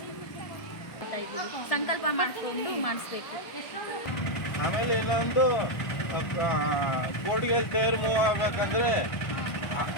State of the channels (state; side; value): late; right; 1.2 ms